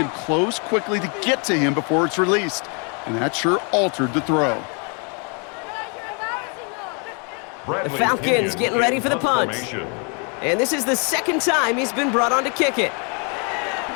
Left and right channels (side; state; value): right; quieter; 36.7 dB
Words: close quickly to get to him before it's released. And that sure altered the throw. The Falcons getting ready for the punt. And this is the 2nd time he's been brought on to kick it.